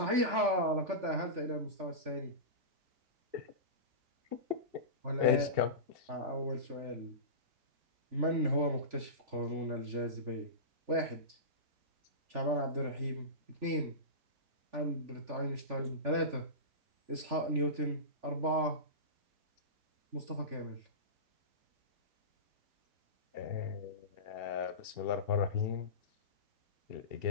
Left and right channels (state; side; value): late; left; 3.4 ms